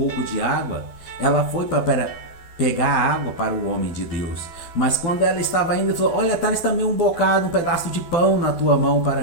de água. Ela foi para pegar água para o homem de Deus, mas quando ela estava indo, falou: olha, traz também um bocado, um pedaço de pão na tua mão para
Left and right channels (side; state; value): right; late; 12 ms